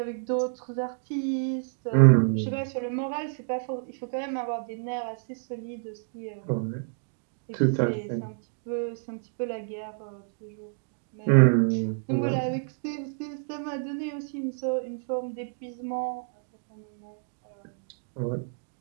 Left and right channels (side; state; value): left; silent; digital silence